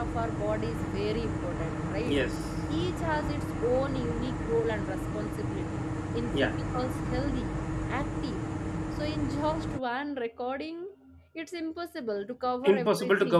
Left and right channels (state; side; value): identical; both; correlation 1.00